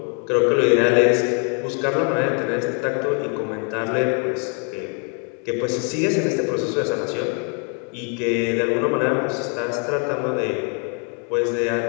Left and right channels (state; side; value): quieter; right; 38.7 dB